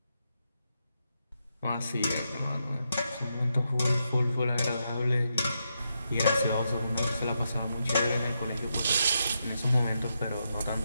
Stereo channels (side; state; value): both; inverted; correlation -0.83